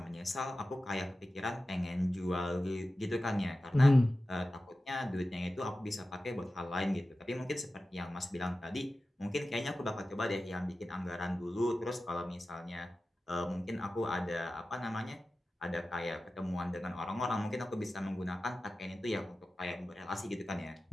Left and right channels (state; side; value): normal; both; correlation 0.94